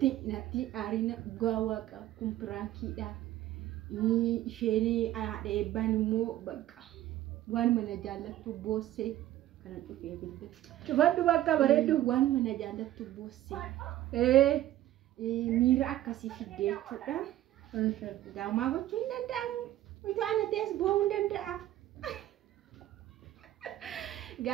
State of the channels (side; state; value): left; quieter; 13.9 dB